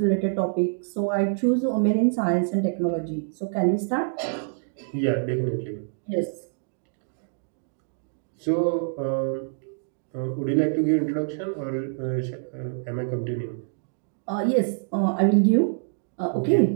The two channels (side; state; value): left; silent; digital silence